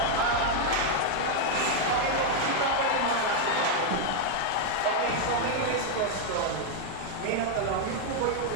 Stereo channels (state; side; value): different; both; correlation 0.00